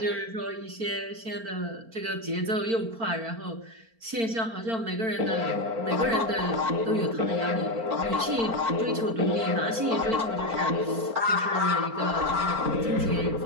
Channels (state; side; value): late; left; 4.4 ms